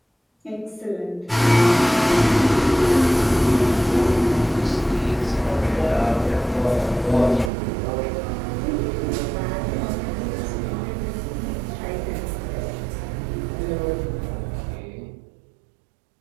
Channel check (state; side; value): drops out; left; at 7.5 s